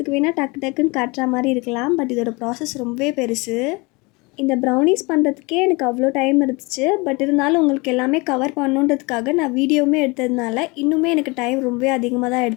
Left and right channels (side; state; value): right; quieter; 26.4 dB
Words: வேணால் டக்கு டக்குன்னு காட்டுற மாதிரி இருக்கலாம். பட் இதோட ப்ராசஸ் ரொம்பவே பெருசு. இந்த ப்ரௌனிஸ் பண்ணுறதுக்கே எனக்கு அவ்வளோ டைம் இருந்துச்சு. பட் இருந்தாலும் உங்களுக்கு எல்லாமே கவர் பண்ணணுன்றதுக்காக நான் வீடியோவுமே எடுத்ததுனால இன்னுமே எனக்கு டைம் ரொம்பவே அதிகமாக தான்